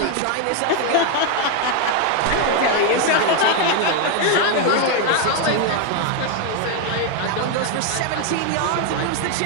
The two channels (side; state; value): both; different; correlation 0.01